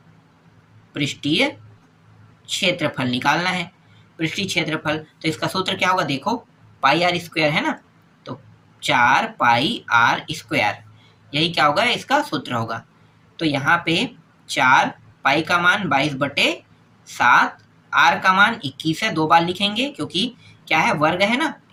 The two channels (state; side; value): identical; both; correlation 1.00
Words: पृष्ठीय क्षेत्रफल निकालना है। पृष्ठीय क्षेत्रफल, तो इसका सूत्र क्या होगा, देखो, पाई आर स्क्वायर है ना, तो 4 पाई आर स्क्वायर, यही क्या होगा, इसका सूत्र होगा। तो यहाँ पे 4 पाई का मान 22/7, आर का मान 21 है, 2 बार लिखेंगे क्योंकि क्या है, वर्ग है ना,